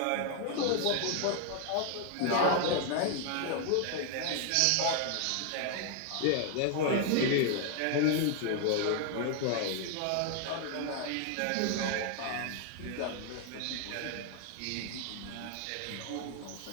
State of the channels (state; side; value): different; both; correlation 0.00